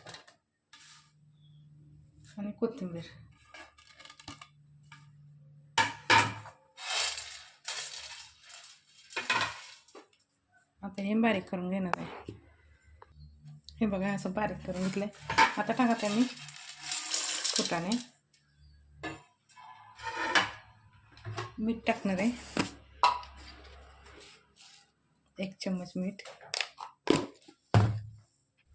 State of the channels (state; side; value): identical; both; correlation 1.00